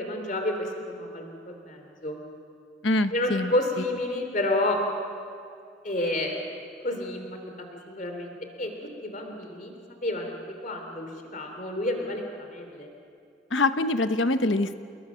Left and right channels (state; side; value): normal; both; correlation 0.34